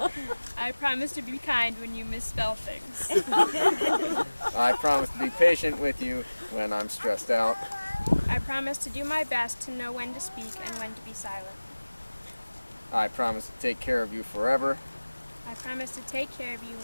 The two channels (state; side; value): inverted; both; correlation -1.00